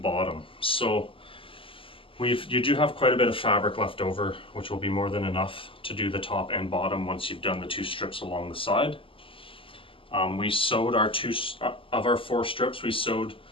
So you do have quite a bit of fabric left over, which will be more than enough to do the top and bottom once you've done the 2 strips along the side. We sewed our 2 of our 4 strips, we sewed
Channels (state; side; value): late; right; 0.26 ms